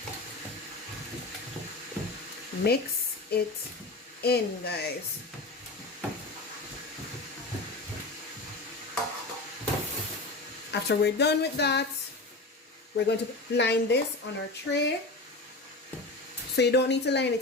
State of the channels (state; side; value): quieter; right; 3.0 dB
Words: Mix it in, guys. After we're done with that, we're going to line this on our tray. So you don't need to line